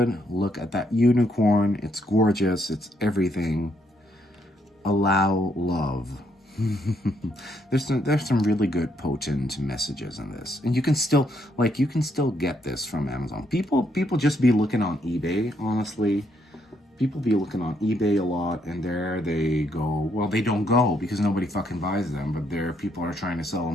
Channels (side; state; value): both; normal; correlation 0.73